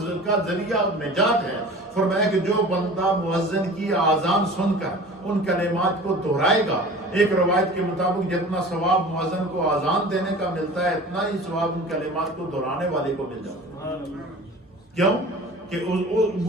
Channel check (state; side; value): normal; both; correlation 0.40